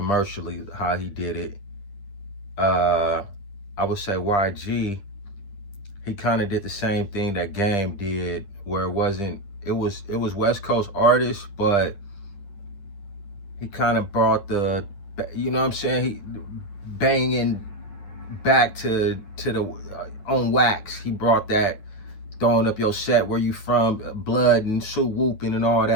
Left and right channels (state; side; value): late; right; 10 ms